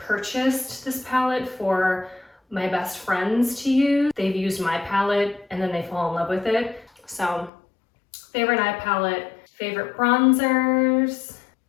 this palette for my best friends to use. They've used my palette and then they fall in love with it. So, favorite eye palette, favorite bronzers,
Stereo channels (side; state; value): right; drops out; at 7.5 s